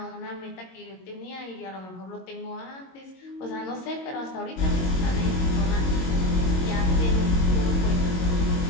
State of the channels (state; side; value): late; right; 22 ms